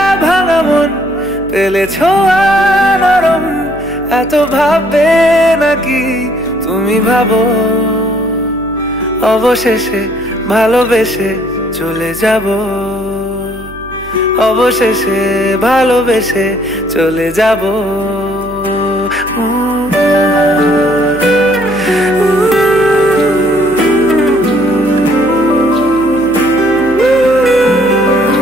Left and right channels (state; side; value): noise; right; hum, 18 dB below the sound